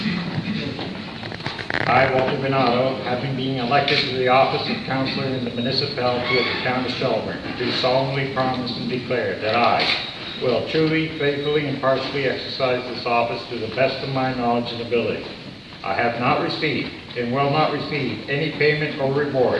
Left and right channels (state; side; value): identical; both; correlation 1.00